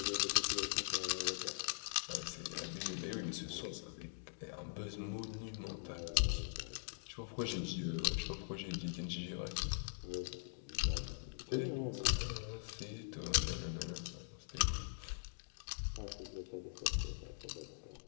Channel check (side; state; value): right; silent; digital silence